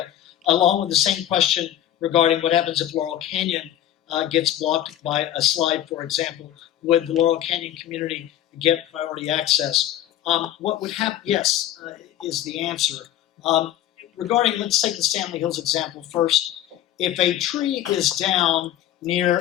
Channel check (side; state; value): right; quieter; 12.0 dB